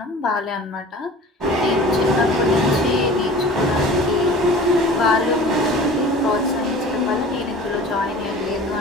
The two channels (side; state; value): both; normal; correlation 0.42